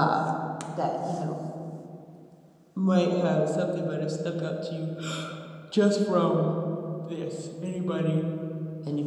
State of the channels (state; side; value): identical; both; correlation 1.00